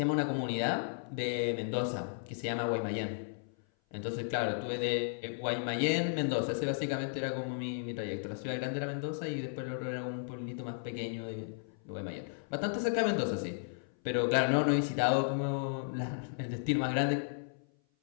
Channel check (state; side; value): silent; right; 55 dB below the other